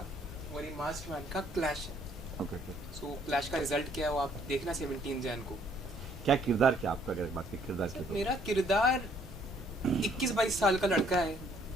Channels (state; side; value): normal; both; correlation 0.64